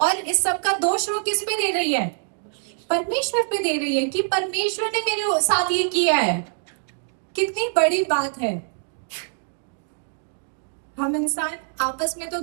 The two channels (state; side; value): silent; left; digital silence